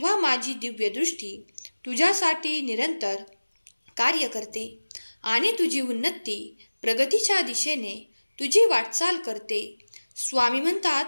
माझी दिव्य दृष्टी तुझ्यासाठी निरंतर कार्य करते आणि तुझी उन्नती प्रगतीच्या दिशेने तुझी वाटचाल करते. स्वामी म्हणतात,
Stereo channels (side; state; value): both; inverted; correlation -1.00